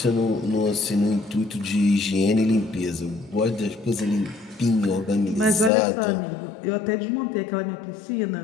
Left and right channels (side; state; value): right; drops out; at 5.7 s